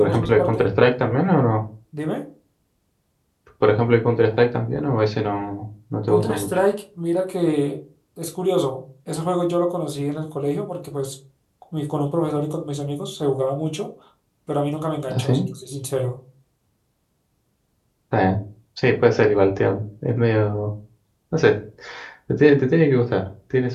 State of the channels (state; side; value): identical; both; correlation 1.00